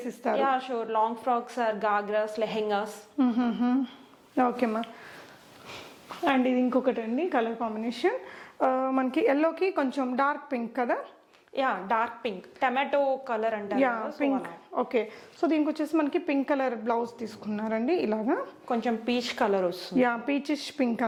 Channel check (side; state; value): both; identical; correlation 1.00